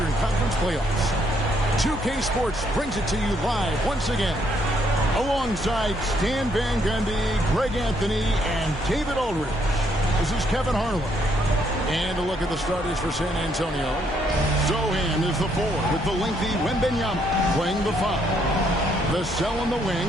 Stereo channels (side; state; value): both; normal; correlation 0.71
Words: Conference playoffs. 2K Sports brings it to you live once again, alongside Stan Van Gundy, Greg Anthony, and David Aldridge. This is Kevin Harlan. And a look at the starters for San Antonio. Zohan is the 4 with the lengthy Wembanyama playing the 5. The Cell on the